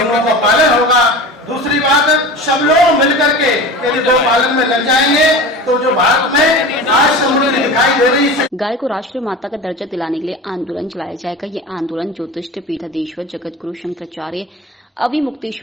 का पालन होगा। दूसरी बात, सब लोग मिलकर के यदि गौ पालन में लग जाएंगे तो जो भारत में आज समृद्धि दिखाई दे रही है। गाय को राष्ट्रीय माता का दर्जा दिलाने के लिए आंदोलन चलाया जाएगा। ये आंदोलन ज्योतिष पीठाधीश्वर जगत गुरु शंकराचार्य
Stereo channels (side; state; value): both; normal; correlation 0.33